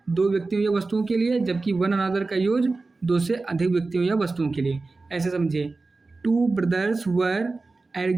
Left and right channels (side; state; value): left; quieter; 3.6 dB